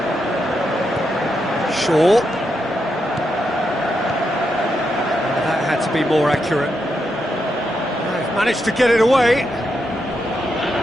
Shaw. That had to be more accurate. They've managed to get it away.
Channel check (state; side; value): normal; both; correlation 0.83